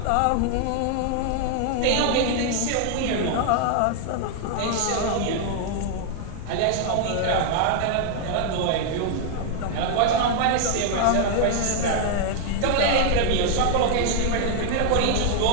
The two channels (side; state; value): both; different; correlation 0.00